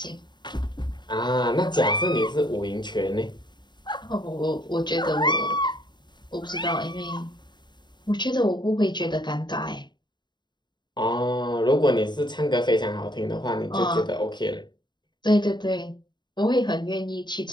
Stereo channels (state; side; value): late; right; 0.21 ms